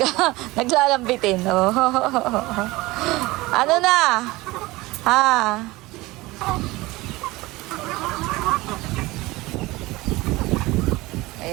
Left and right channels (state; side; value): quieter; left; 20.5 dB